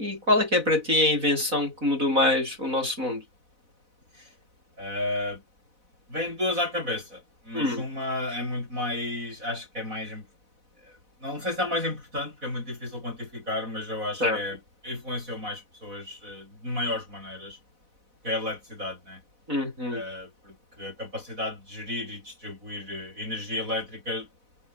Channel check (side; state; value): left; late; 4.0 ms